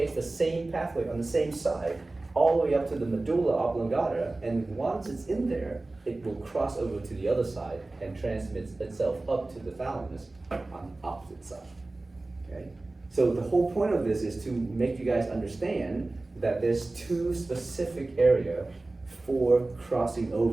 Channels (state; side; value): quieter; left; 3.1 dB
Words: the same pathway on the same side all the way up to the medulla oblongata, and once it's in there, it will cross over to the other side and transmits itself up to the thalamus on the opposite side. Okay? So the whole point of this is to make you guys understand that there's two specific areas for crossing